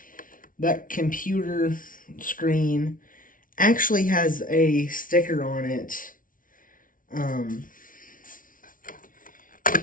that computer screen actually has a sticker on it.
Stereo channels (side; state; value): right; late; 0.39 ms